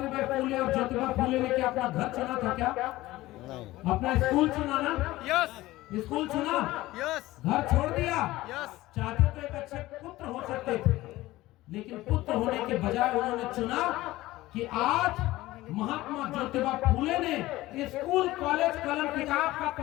फूले और ज्योतिबा फूले ने क्या अपना घर चुना था क्या? अपना स्कूल चुना ना? यस स्कूल चुना, यस घर छोड़ दिया। यस चाहते तो एक अच्छे पुत्र हो सकते थे, लेकिन पुत्र होने के बजाय उन्होंने चुना कि आज महात्मा ज्योतिबा फूले ने स्कूल कॉलेज कलम किताब का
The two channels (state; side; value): quieter; right; 17.5 dB